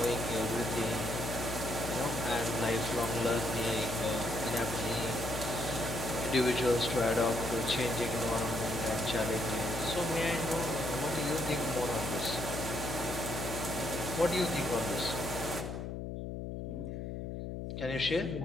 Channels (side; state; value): left; noise; hum, 5 dB below the sound